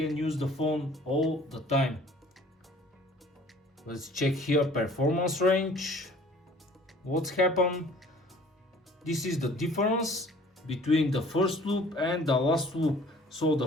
use the phone all the time. Let's check here performance range. What's happened? This is the difference between the first loop and the last loop. So the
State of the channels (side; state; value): both; normal; correlation 0.51